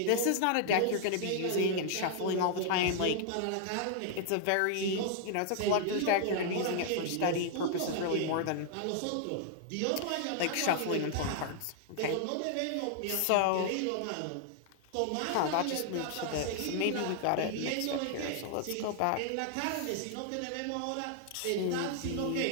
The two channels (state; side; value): different; both; correlation -0.01